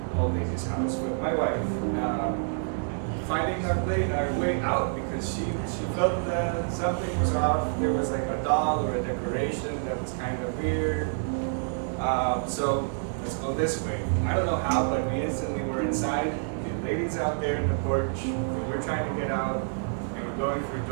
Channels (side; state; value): left; silent; 55 dB below the other